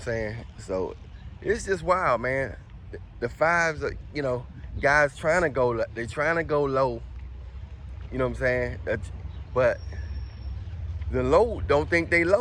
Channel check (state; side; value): identical; both; correlation 1.00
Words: saying? So it's just wild, man. The fives are, you know, guys trying to go, they're trying to go low. You know what I'm saying? But the low don't think they